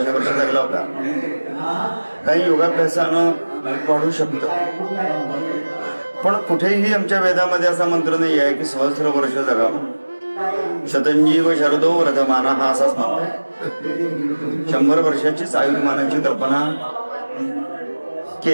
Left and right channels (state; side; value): inverted; both; correlation -1.00